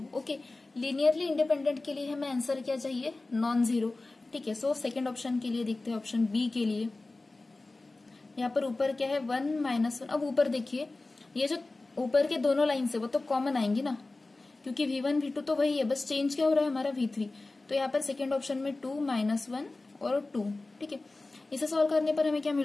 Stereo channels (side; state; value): right; quieter; 3.2 dB